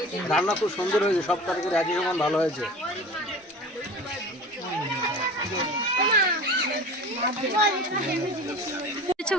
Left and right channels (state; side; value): normal; both; correlation 0.37